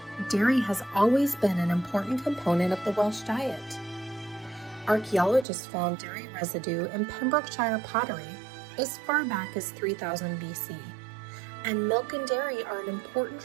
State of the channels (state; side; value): drops out; left; at 5.5 s